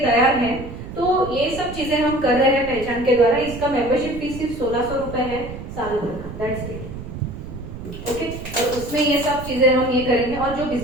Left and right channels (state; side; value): noise; right; rumble, 11 dB below the sound